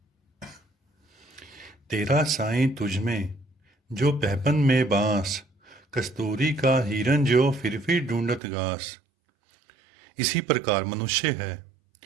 तेरा साईं तुझमें जो पैपन में बांस, कस्तूरी का हिरन जो फिर ढूंढत घास। इसी प्रकार मनुष्य है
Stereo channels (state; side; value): drops out; left; at 8.4 s